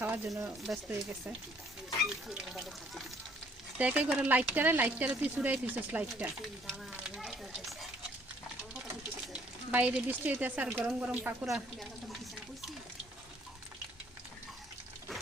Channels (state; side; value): normal; both; correlation 0.62